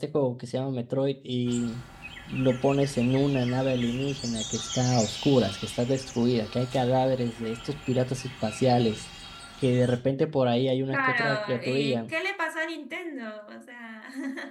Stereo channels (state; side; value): identical; both; correlation 1.00